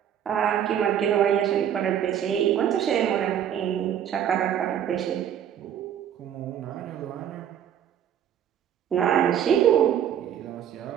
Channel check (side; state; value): left; quieter; 9.6 dB